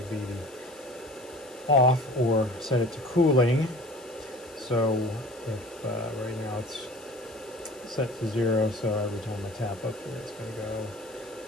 be the off, or set it to cooling. So if right now it's set to 0, so every time I tap up here it's going to go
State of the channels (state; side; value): noise; left; hiss, 22 dB below the sound